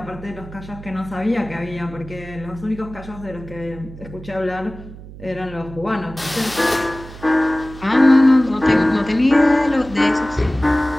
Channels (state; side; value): noise; right; hum, 16 dB below the sound